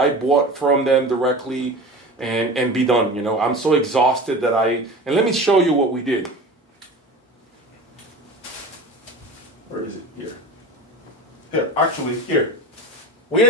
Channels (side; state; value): both; normal; correlation 0.33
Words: bought from them directly, and be done. You know, I'm so exhausted that and let me show you what we did. Where is it? Here. Here, actually, here. We